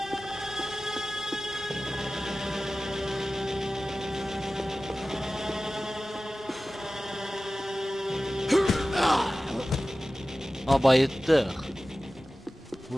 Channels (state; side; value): normal; both; correlation 0.96